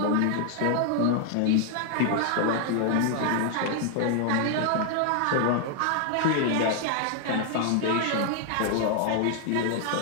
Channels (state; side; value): different; both; correlation 0.00